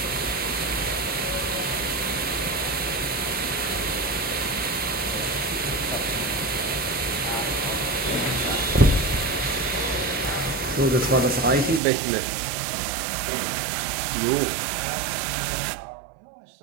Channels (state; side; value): drops out; left; at 11.8 s